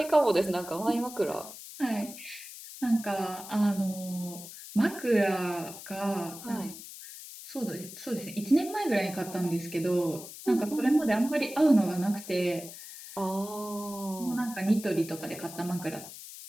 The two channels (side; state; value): left; noise; hiss, 13 dB below the sound